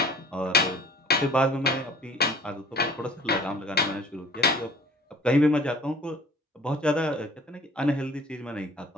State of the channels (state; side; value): normal; both; correlation 0.49